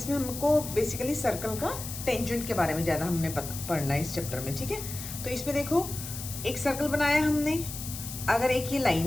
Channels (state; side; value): noise; left; hiss, 9 dB below the sound